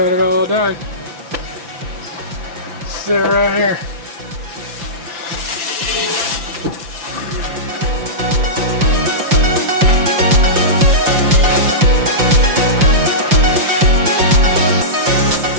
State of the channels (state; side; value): late; left; 5.8 ms